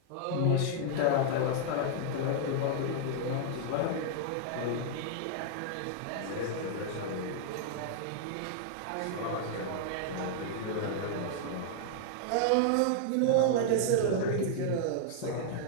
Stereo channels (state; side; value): different; both; correlation -0.01